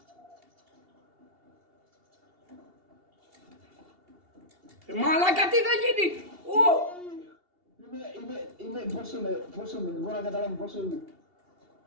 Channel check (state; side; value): late; left; 2.8 ms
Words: Μαλάκα, τι θα γίνει! Πόσο είμαι, δεν μπορώ να καταλάβω πόσο είμαι.